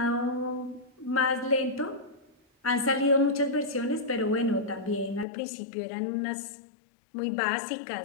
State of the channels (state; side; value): drops out; right; at 5.2 s